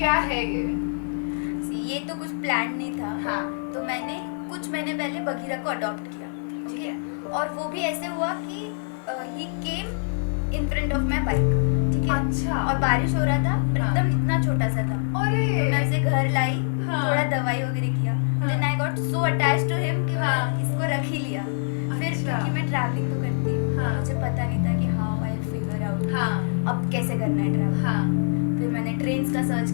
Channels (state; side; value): silent; right; digital silence